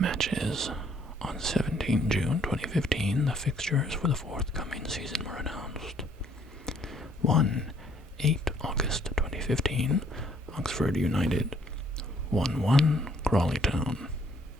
On 17 June 2015, the fixtures for the forthcoming season were announced. 1. 8 August 2015, Oxford United 1-1 Crawley Town,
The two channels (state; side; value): normal; both; correlation 0.65